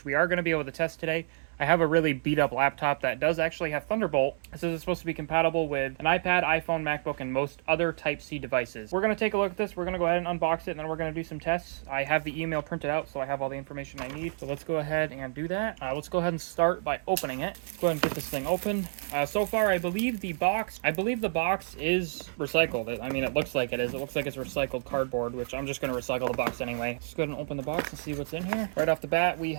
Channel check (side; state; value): left; silent; 58 dB below the other